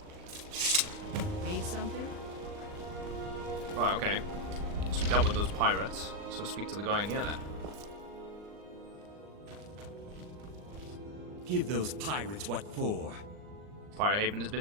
Need something? Right, okay. So we dealt with those pirates, so speak to the guy in here then. Give those pirates what for. Pirate Haven has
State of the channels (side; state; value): left; late; 39 ms